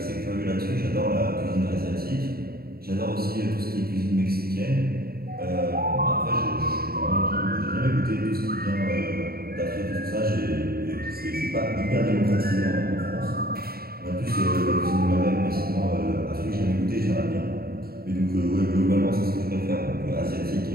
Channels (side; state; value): left; late; 0.44 ms